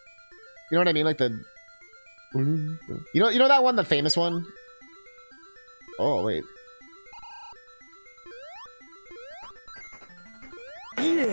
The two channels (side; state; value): both; inverted; correlation -1.00